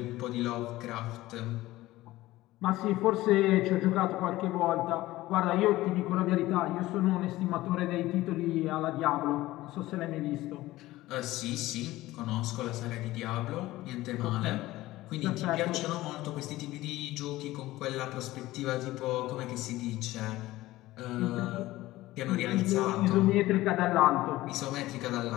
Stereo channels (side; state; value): right; quieter; 17.2 dB